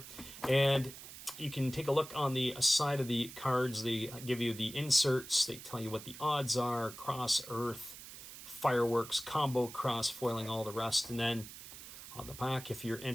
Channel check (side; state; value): right; noise; hiss, 14 dB below the sound